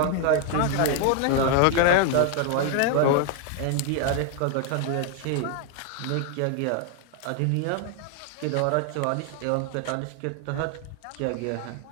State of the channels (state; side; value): different; both; correlation 0.00